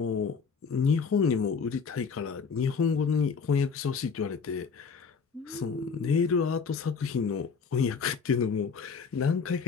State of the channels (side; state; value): right; quieter; 5.6 dB